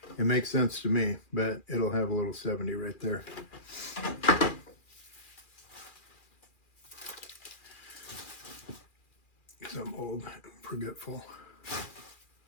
It makes sense to me, but it'll have a little 70 right there. Because I'm old and forgetful.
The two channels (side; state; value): right; late; 2.4 ms